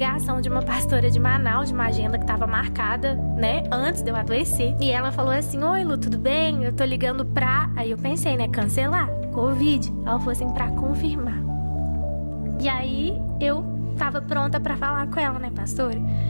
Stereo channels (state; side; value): inverted; both; correlation -1.00